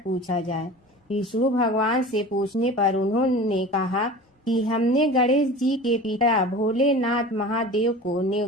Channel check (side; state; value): both; normal; correlation 0.37